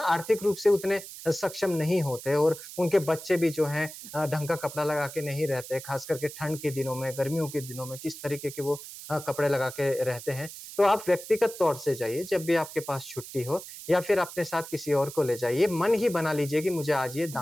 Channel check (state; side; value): noise; right; hiss, 13 dB below the sound